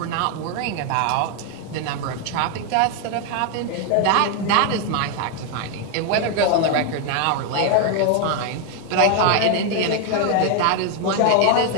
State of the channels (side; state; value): both; different; correlation 0.00